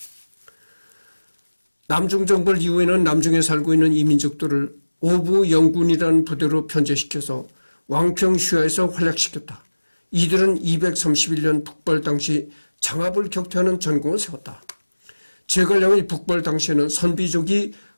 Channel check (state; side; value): inverted; both; correlation -1.00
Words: 남중 정벌 이후에는 남중에 살고 있는 이민족들을 오부 영군이라는 부대로 편제시켜서 왕평 휘하에서 활약시켰다. 이들은 231년 북벌 당시 장합을 격퇴하는 전공을 세웠다. 제갈량의 북벌 당시에는 선비족이